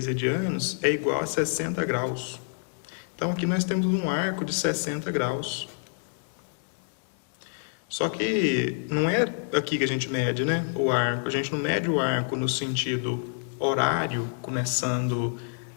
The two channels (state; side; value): silent; right; digital silence